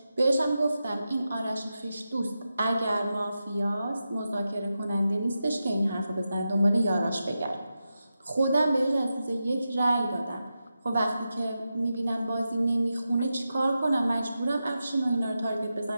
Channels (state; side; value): inverted; both; correlation -0.90